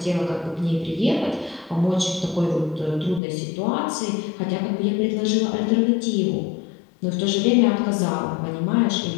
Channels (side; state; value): right; drops out; at 3.2 s